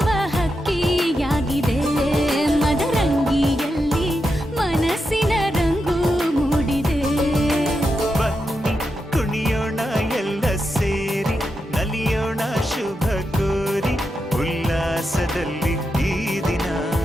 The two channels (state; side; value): normal; both; correlation 0.87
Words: ಹಕ್ಕಿಯಾಗಿದೆ. ಮದರಂಗಿಯಲ್ಲಿ ಮನಸ್ಸಿನ ರಂಗು ಮೂಡಿದೆ. ಬನ್ನಿ ಕುಣಿಯೋಣ ಎಲ್ಲ ಸೇರಿ ನಲಿಯೋಣ ಶುಭ ಕೋರಿ ಉಲ್ಲಾಸದಲ್ಲಿ ಈ ದಿನ.